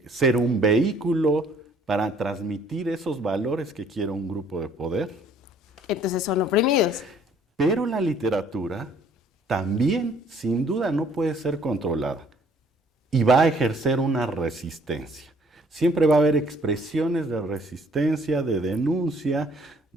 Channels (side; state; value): both; normal; correlation 0.59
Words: ser un vehículo para transmitir esos valores que quiere un grupo de poder. Entonces son oprimidos. Pero la literatura también, sin duda, no puede ser controlada y va a ejercer una resistencia. Siempre va a haber expresiones de resistencia, de denuncia,